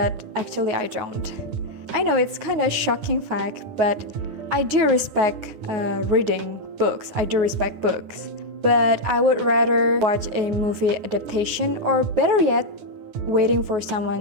actually, I don't. I know it's kind of shocking fact, but I do respect reading books. I do respect books. But I would rather watch a movie adaptation, or better yet, waiting for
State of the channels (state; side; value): late; left; 9.4 ms